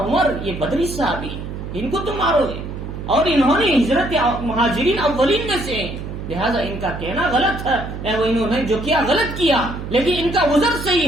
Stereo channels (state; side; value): noise; right; hum, 8 dB below the sound